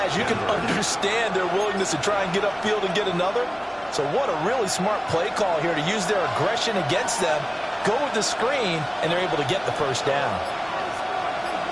you can understand their willingness to try and get upfield and get another. So what a really smart play call here to use their aggression against them. Go with the screen, and they're able to get the first down.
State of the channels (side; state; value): both; identical; correlation 1.00